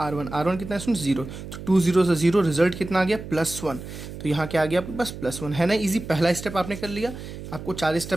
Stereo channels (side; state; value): right; noise; hum, 11 dB below the sound